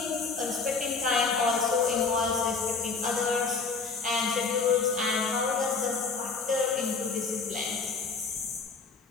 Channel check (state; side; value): quieter; right; 4.6 dB